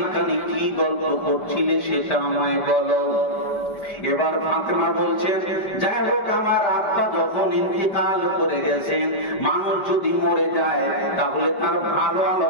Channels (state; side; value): late; right; 5.1 ms